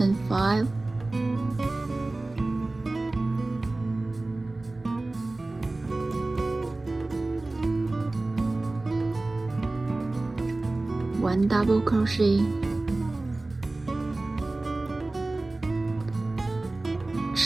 5, one double crochet,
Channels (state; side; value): quieter; left; 3.0 dB